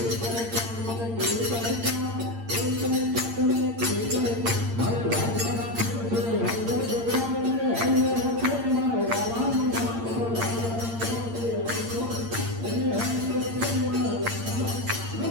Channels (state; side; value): late; left; 8.7 ms